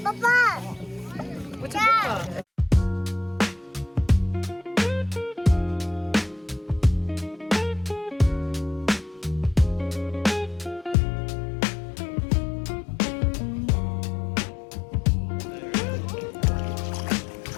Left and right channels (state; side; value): drops out; right; at 11.0 s